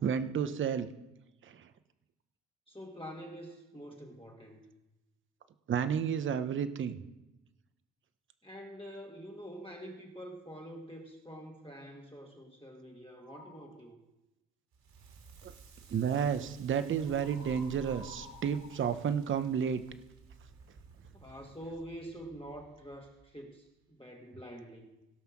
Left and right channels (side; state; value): left; quieter; 6.8 dB